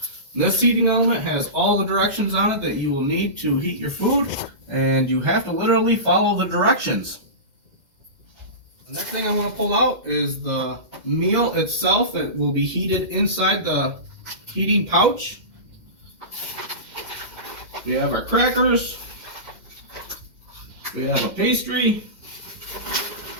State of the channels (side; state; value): left; late; 2.1 ms